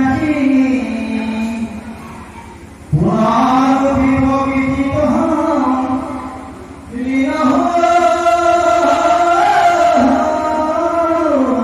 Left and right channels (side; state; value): both; identical; correlation 1.00